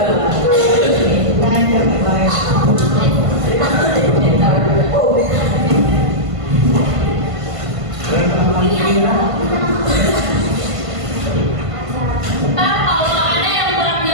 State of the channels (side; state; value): left; late; 1.5 ms